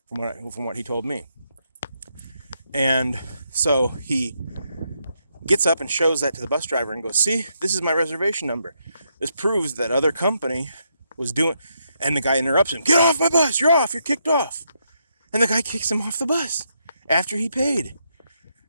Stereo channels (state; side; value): inverted; both; correlation -0.79